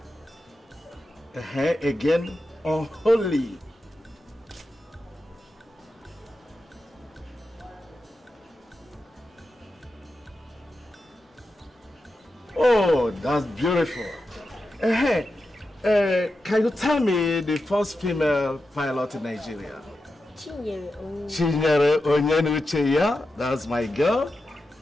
Again, unholy. Oh, that's beautiful. Can you tell me the first female pilot in Nigeria? Chinwe Owo. That's my girl.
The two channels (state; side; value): normal; both; correlation 0.90